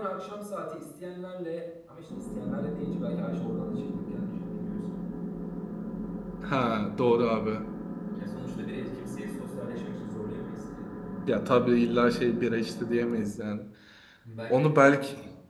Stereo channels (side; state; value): both; identical; correlation 1.00